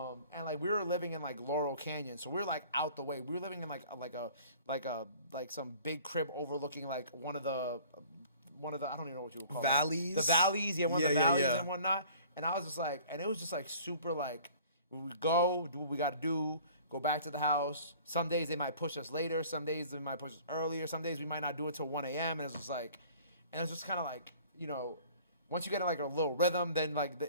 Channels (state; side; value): inverted; both; correlation -0.50